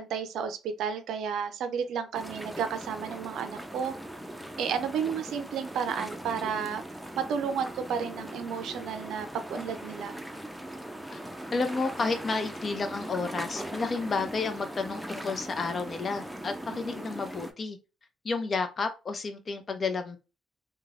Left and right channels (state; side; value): normal; both; correlation 0.69